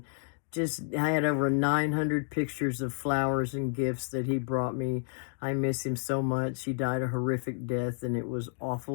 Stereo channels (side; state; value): right; silent; digital silence